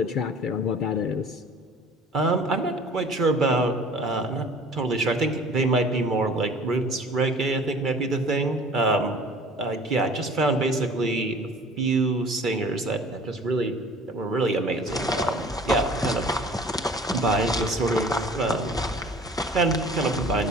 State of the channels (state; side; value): normal; both; correlation 0.46